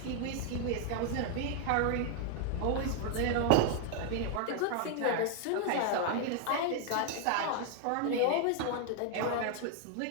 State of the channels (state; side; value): different; both; correlation 0.00